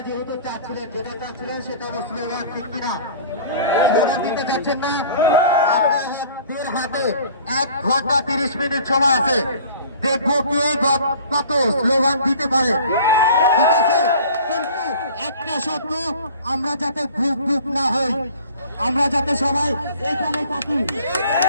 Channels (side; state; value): both; inverted; correlation -0.46